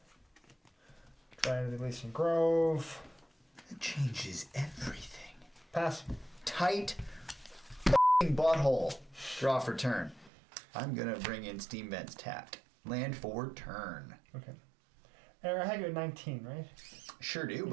Dryad of the Ilysian Grove. It changes everything. Pass. Tight f***ing butthole. Draw for turn. I'm gonna bring in Steam Vents tapped. Land for turn. Okay. Eric, I had you at 19, right? Sure do,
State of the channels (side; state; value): left; drops out; at 10.3 s